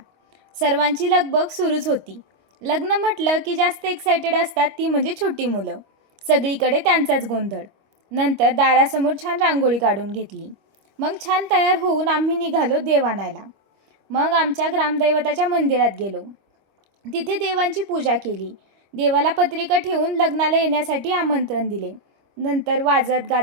सर्वांची लगबग सुरूच होती. लग्न म्हटलं की जास्त एक्सायटेड असतात ती म्हणजे छोटी मुलं. सगळीकडे त्यांचाच गोंधळ. नंतर दारासमोर छान रांगोळी काढून घेतली. मग छान तयार होऊन आम्ही निघालो देव आणायला. मग आमच्या ग्रामदैवताच्या मंदिरात गेलो. तिथे देवांची पूजा केली. देवाला पत्रिका ठेवून लग्नाला येण्यासाठी आमंत्रण दिले. नंतर वाजत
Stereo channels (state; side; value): late; left; 25 ms